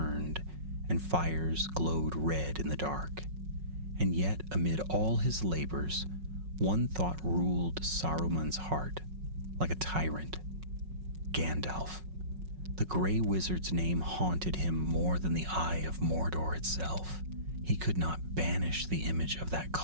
and fires glowed red in the dark. And yet, amid all his labors, one thought ruled Saruman's heart, like a tyrant: Gandalf. The Grey Wizard's name haunted him more than the eye of Mordor itself. He could not banish the image of that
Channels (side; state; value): left; late; 5.4 ms